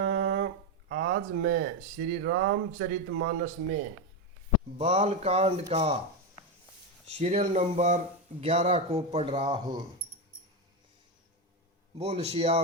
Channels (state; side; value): normal; both; correlation 0.11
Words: आज मैं श्री रामचरितमानस में बालकांड का सीरियल नंबर 11 को पढ़ रहा हूँ। बोल